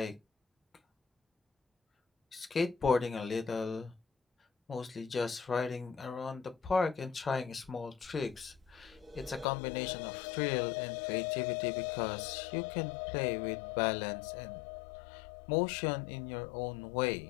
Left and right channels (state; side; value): drops out; right; at 9.5 s